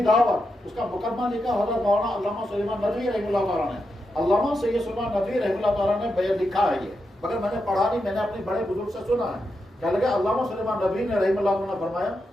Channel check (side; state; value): both; normal; correlation 0.86